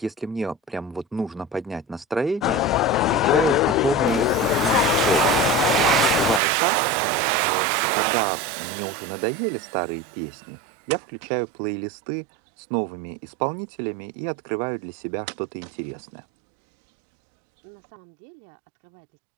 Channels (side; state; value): left; drops out; at 6.4 s